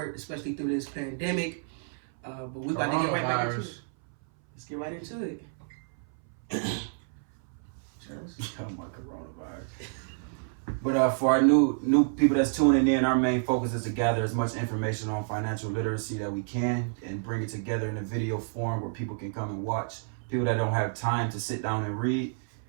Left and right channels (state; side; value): silent; left; 58 dB below the other